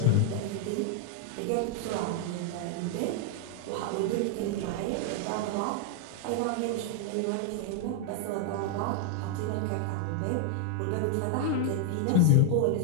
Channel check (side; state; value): both; different; correlation 0.00